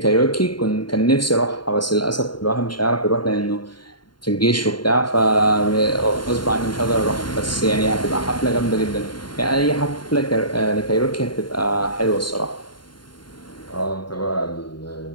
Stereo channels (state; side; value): late; right; 0.72 ms